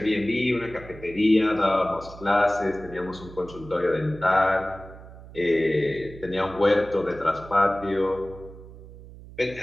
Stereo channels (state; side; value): noise; right; hum, 17 dB below the sound